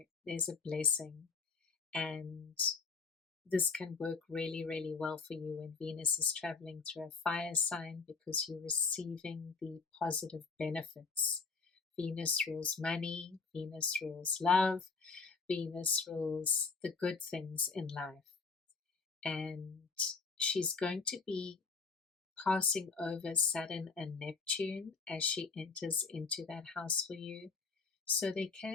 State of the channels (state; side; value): quieter; right; 4.8 dB